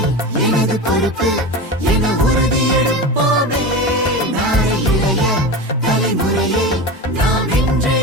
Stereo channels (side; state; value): both; normal; correlation 0.26